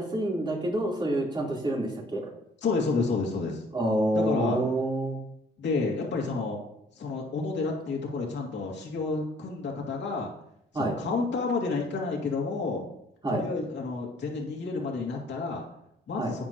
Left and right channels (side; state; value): both; normal; correlation 0.58